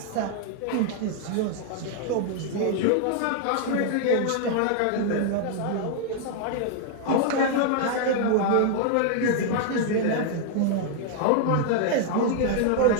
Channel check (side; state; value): both; different; correlation 0.00